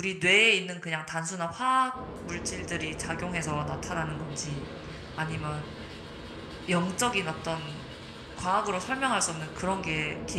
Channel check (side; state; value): both; identical; correlation 1.00